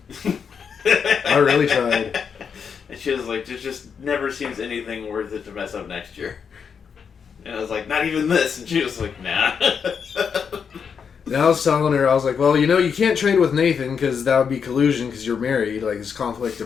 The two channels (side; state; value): right; quieter; 6.6 dB